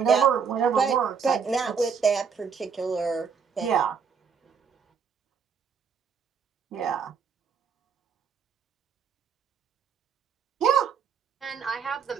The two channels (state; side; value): quieter; left; 6.3 dB